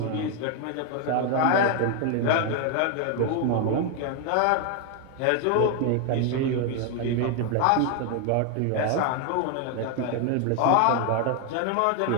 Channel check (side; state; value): both; different; correlation 0.01